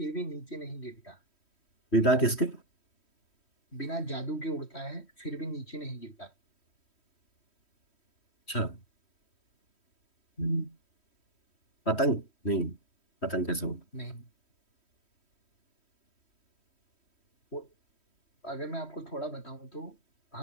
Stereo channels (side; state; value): right; late; 3.1 ms